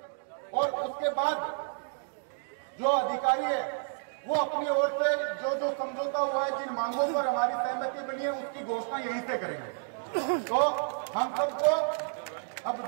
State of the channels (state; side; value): silent; left; digital silence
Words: और उसके बाद जो अधिकारी है वो अपनी ओर से जो समझौता हुआ है, जिन मांगों पर हमारी सहमति बनी है उसकी घोषणा यहीं से करेंगे। तो हम सबको अब